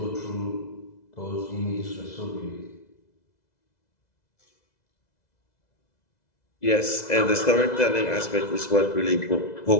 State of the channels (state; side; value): late; right; 2.0 ms